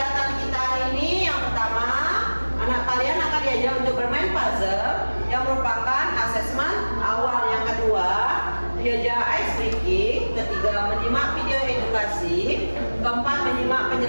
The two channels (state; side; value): inverted; both; correlation -1.00